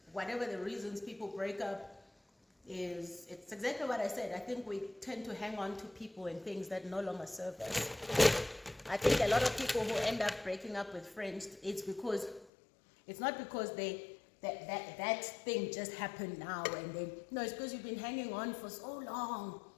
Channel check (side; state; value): right; drops out; at 12.5 s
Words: Whatever the reasons people break up it's exactly what I said. I think we tend to hang on to people and things that no longer serve us. I think a lot of people who end up breaking up with friends, it's not because that thing just happened now and then. No, it's because you've been hanging on for so long,